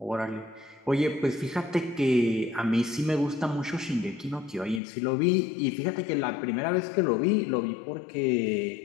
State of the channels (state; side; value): drops out; right; at 4.8 s